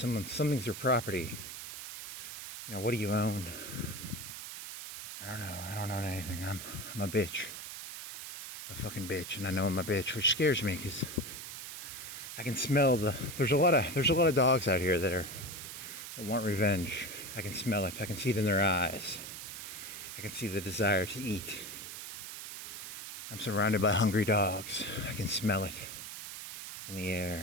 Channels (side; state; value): right; noise; hiss, 9 dB below the sound